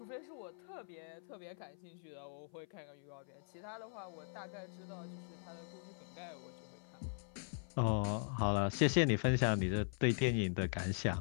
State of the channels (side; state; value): right; silent; 51 dB below the other